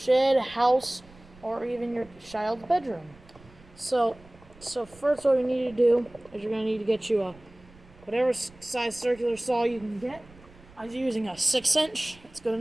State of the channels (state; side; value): noise; right; rumble, 24 dB below the sound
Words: house, or even your child's bedroom. So first what you need to do is you're going to need to get you a whatever size circular saw you can get. I was using a 6-inch, it's good